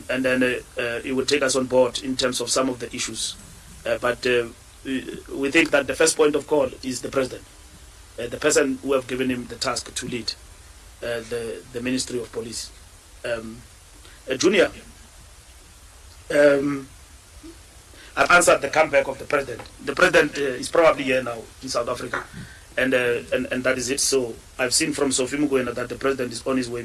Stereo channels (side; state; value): both; identical; correlation 1.00